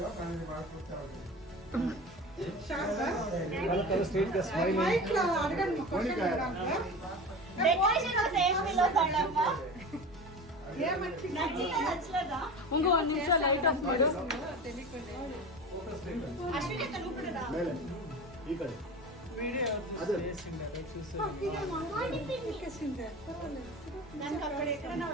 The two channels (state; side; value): normal; both; correlation 0.32